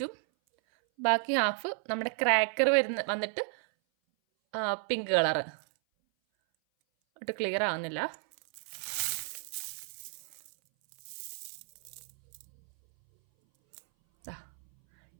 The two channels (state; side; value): silent; left; 56 dB below the other